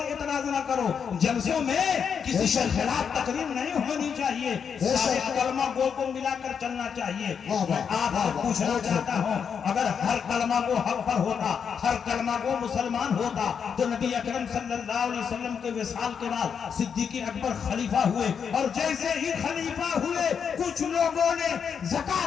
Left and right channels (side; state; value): right; quieter; 6.9 dB